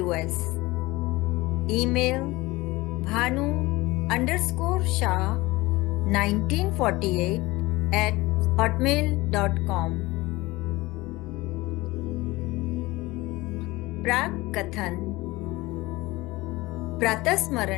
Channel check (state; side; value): quieter; right; 20.7 dB